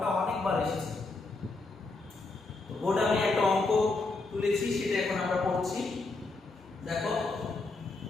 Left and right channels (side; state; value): right; quieter; 3.5 dB